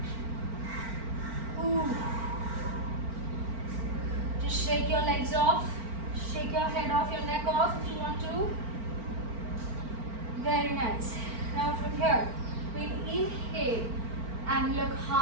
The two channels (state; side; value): late; left; 4.4 ms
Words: Ooh. Just shake your legs off. Shake your head off, your neck off if you want to. Very nice. Now from here, we'll inhale and look